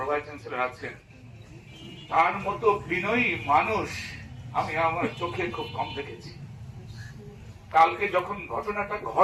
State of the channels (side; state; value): both; identical; correlation 1.00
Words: চ্যান্সেলর আছেন, তার মতো বিনয়ী মানুষ আমি আমার চোখে খুব কম দেখেছি। কালকে যখন ঘটনাটা